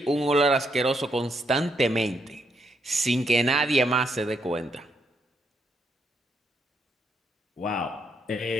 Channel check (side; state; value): both; normal; correlation 0.76